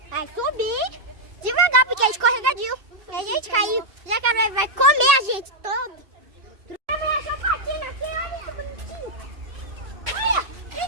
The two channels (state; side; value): late; left; 2.7 ms